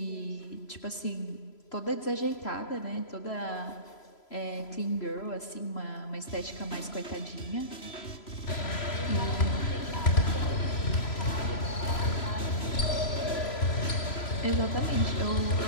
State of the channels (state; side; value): late; right; 3.0 ms